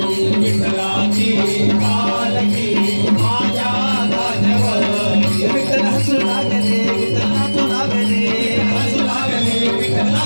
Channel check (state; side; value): inverted; both; correlation -1.00